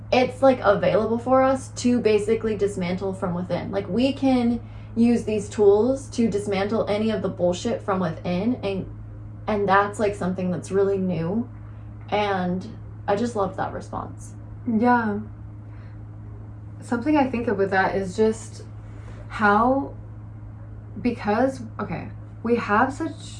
it's like available for us to basically dismantle from within. Like we can use these tools to dismantle any of the bullshit from within. And that's like something that's really new. And I just loved that response. Yeah. Something I think of with that is just how, because, we have such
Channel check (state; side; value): identical; both; correlation 1.00